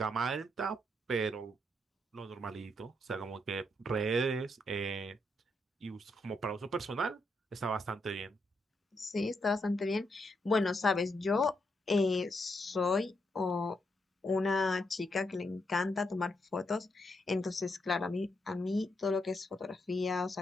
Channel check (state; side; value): normal; both; correlation 0.80